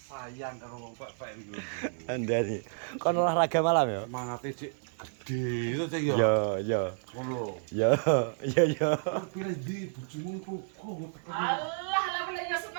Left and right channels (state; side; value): silent; left; digital silence